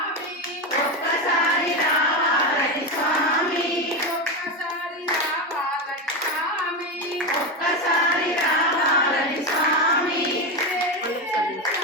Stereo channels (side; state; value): both; normal; correlation 0.15